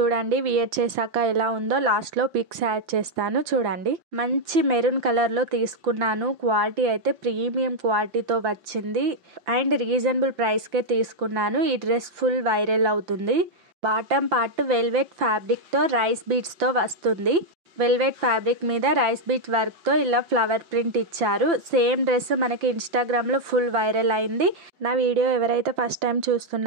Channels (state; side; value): late; left; 5.8 ms